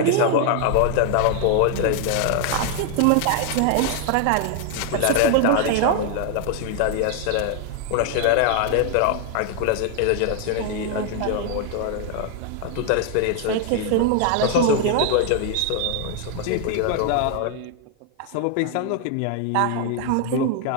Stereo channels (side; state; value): both; different; correlation 0.00